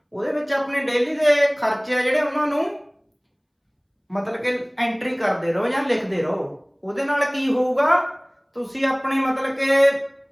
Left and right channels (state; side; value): identical; both; correlation 1.00